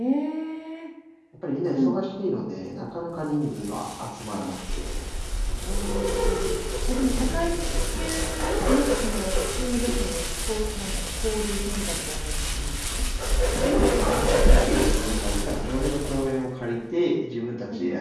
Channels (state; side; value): identical; both; correlation 1.00